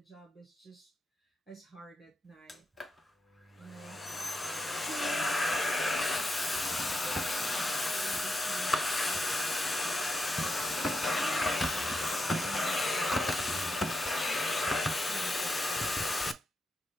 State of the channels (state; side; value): normal; both; correlation 0.85